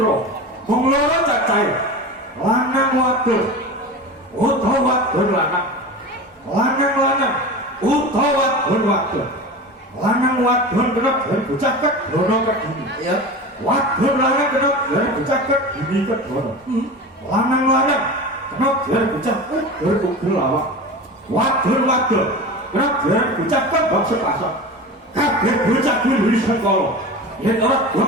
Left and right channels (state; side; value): normal; both; correlation 0.30